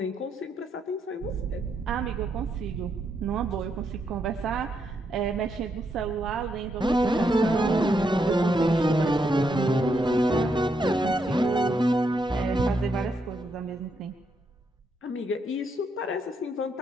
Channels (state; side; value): normal; both; correlation 0.78